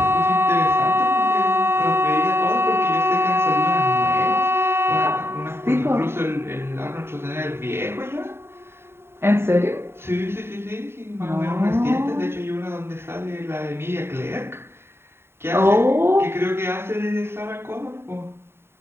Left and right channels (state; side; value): late; left; 0.11 ms